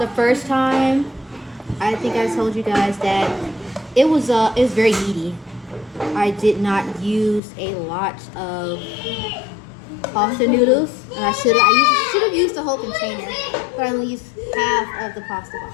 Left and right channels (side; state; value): right; drops out; at 7.4 s